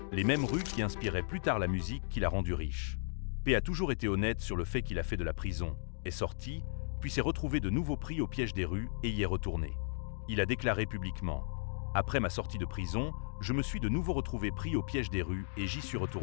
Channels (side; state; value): right; silent; digital silence